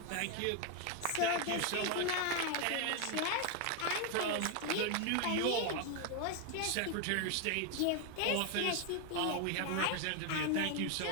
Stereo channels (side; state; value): both; different; correlation 0.01